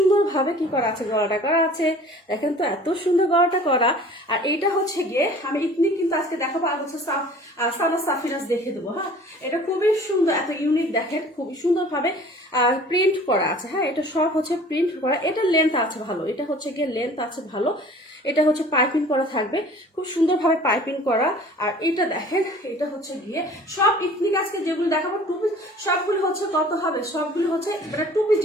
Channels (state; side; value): normal; both; correlation 0.48